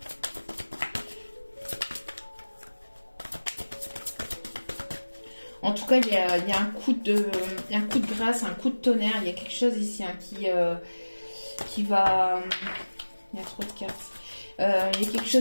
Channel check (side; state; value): both; inverted; correlation -1.00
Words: En tout cas, il y a un coup de grâce, un coup de tonnerre. Il y a quelque chose ici hein, qui va... Il y a trop de cartes. Il y a quelque